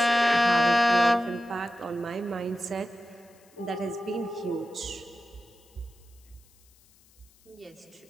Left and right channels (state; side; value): noise; left; hiss, 30 dB below the sound